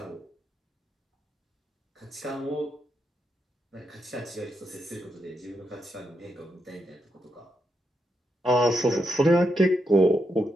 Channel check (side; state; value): both; normal; correlation 0.82